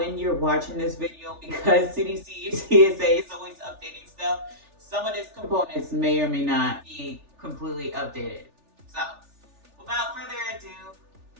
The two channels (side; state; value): left; late; 3.4 ms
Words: you're watching this video, because CDC and TSA is always updating stuff, some of these components may or may not be completely updated. So without further ado,